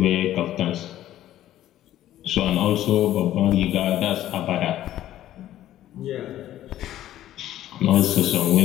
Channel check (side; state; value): right; quieter; 13.1 dB